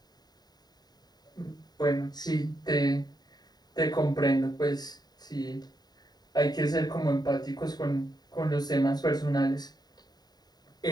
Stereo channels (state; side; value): late; right; 0.20 ms